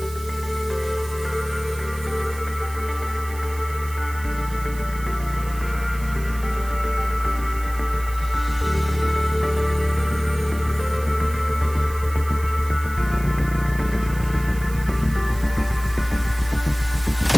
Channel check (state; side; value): noise; right; hiss, 17 dB below the sound